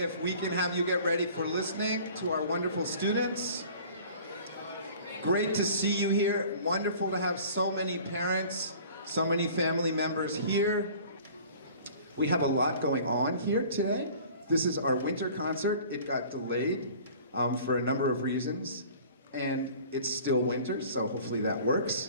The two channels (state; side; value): inverted; both; correlation -0.47